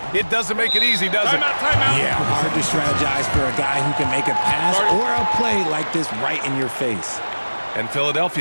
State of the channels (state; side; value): inverted; both; correlation -1.00